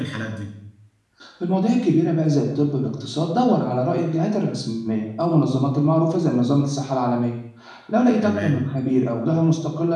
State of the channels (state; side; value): identical; both; correlation 1.00